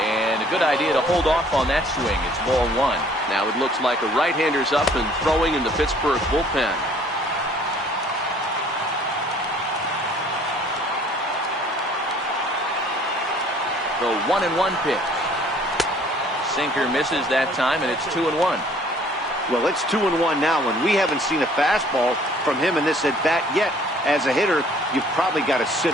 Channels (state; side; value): normal; both; correlation 0.56